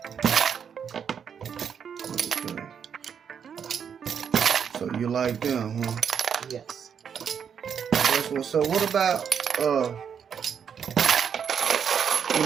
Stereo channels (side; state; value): left; quieter; 7.5 dB